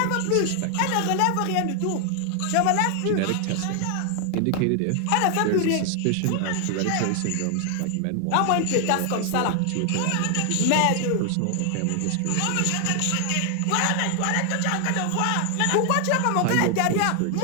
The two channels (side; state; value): both; different; correlation 0.00